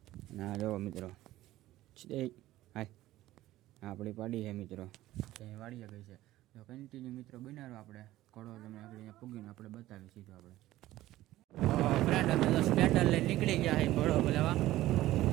ના જો મિત્રો હાય આપણી પાડી છે મિત્રો, ત્યાં વાડીએ ગઈ છે। તો કન્ટિન્યુ મિત્રો બનાવો આપણે ઘોડો તમે આગળ અહીંયા પૂગીને આપણે બતાવી સીધું આપણે ફ્રેન્ડ અમે તો સ્પ્લેન્ડર લઈને નીકળી ગયા છે ઘોડો બોલાવા।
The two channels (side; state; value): left; quieter; 15.6 dB